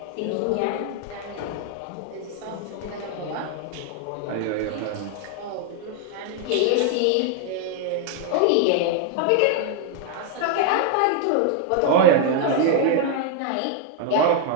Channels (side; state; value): both; different; correlation 0.00